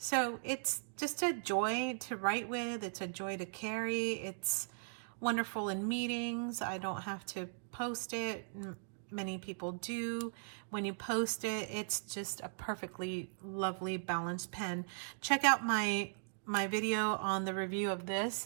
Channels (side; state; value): left; silent; digital silence